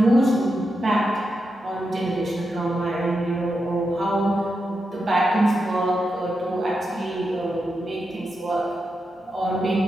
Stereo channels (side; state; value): both; normal; correlation 0.87